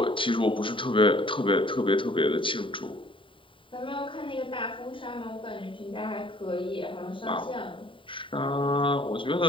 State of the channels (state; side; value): late; right; 0.25 ms